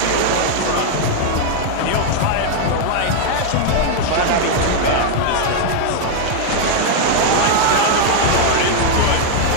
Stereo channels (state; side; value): different; both; correlation 0.00